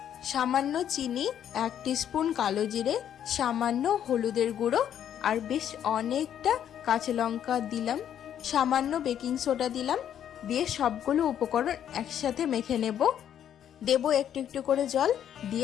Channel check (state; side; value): quieter; right; 9.8 dB